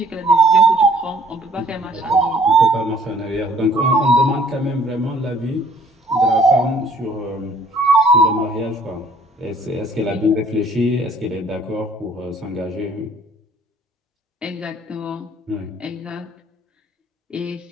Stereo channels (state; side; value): normal; both; correlation 0.58